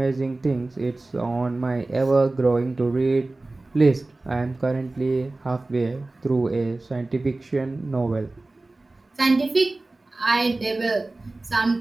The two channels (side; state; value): left; quieter; 3.0 dB